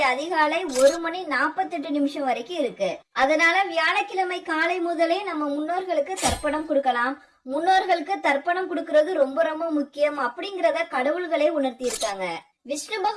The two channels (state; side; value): identical; both; correlation 1.00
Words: அதிகாலை 1:48 வரைக்கும் இருக்கு. அதனால வியாழக்கிழமை காலை முதலே நம்ம முன்னோர்களுக்கு தர்ப்பணம் கொடுக்கலாம். முன்னோர்களுக்கு தர்ப்பணம் கொடுக்கறது ரொம்ப ரொம்ப முக்கியம் அப்படிங்கறத கடவுள்களே உணர்த்தி இருக்காங்க. விஷ்ணு